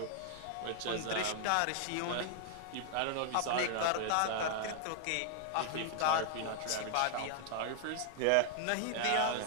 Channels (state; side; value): different; both; correlation 0.00